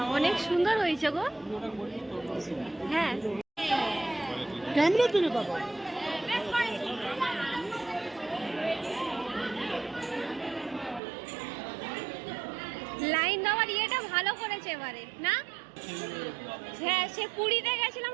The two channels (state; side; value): drops out; left; at 11.0 s